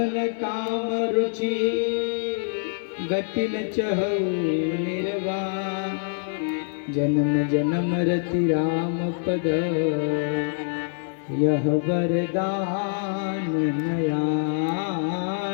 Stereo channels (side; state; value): right; silent; digital silence